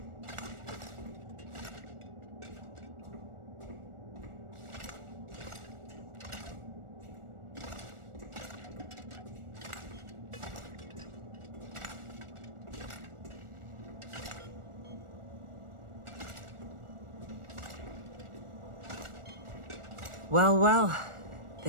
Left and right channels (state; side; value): late; left; 1.4 ms